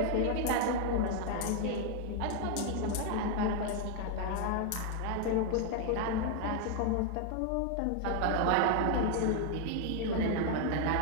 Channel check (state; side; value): different; both; correlation 0.00